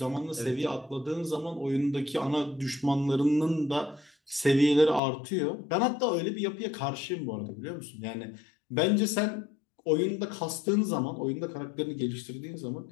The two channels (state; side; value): drops out; right; at 5.0 s